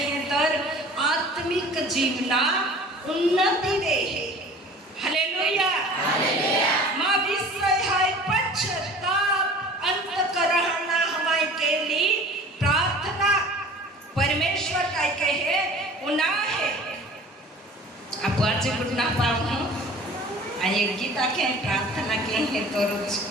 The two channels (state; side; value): normal; both; correlation 0.45